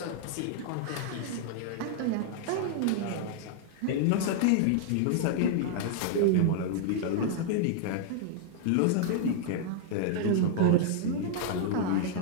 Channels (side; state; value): both; different; correlation -0.01